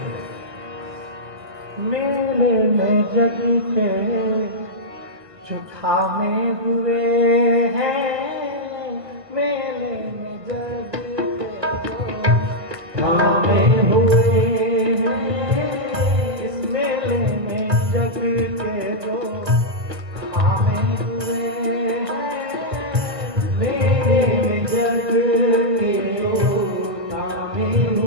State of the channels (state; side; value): late; left; 1.4 ms